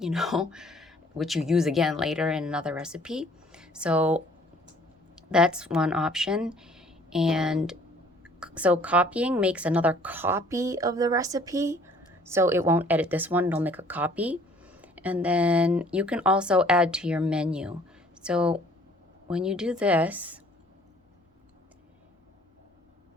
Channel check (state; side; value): normal; both; correlation 0.56